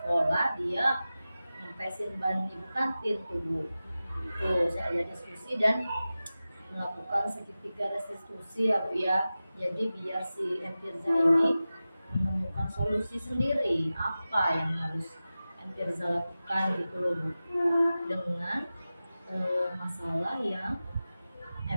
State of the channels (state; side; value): inverted; both; correlation -0.95